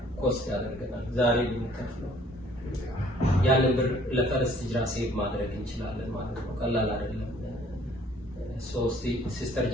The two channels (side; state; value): both; normal; correlation 0.58